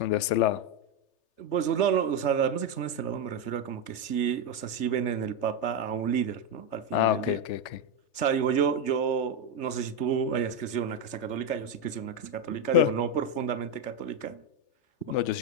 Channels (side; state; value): right; late; 3.3 ms